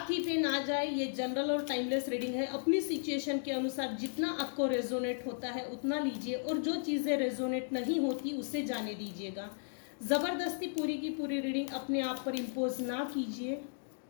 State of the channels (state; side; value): silent; right; digital silence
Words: थी पे ना जाए, ये जनरल और टाइमलेस रीडिंग है। अपनी सिचुएशन के अनुसार जितना आपको रेजोनेट होता है उतना लीजिए, और जो चीज़ें रेजोनेट नहीं होती उसे जाने दीजिएगा। ज़बरदस्ती पूरी की पूरी रीडिंग अपने आप पर इम्पोज ना कीजिए।